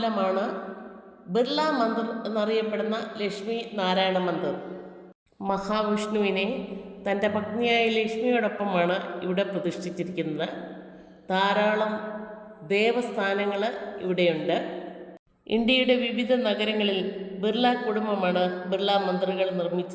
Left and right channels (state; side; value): identical; both; correlation 1.00